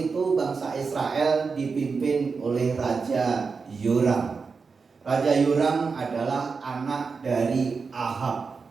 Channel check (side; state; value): left; quieter; 4.9 dB